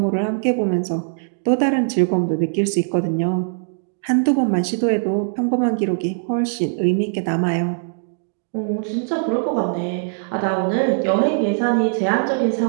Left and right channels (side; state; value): left; silent; digital silence